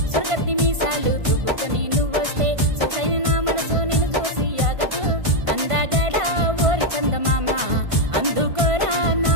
సురగత్తి మీసాలు దువ్వుకొని నువ్వొస్తే సొసైన నా మనసు నిన్ను చూసి ఆగదు అందగడ ఓరి చందమామ అందుకోరా నా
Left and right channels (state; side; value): late; left; 1.4 ms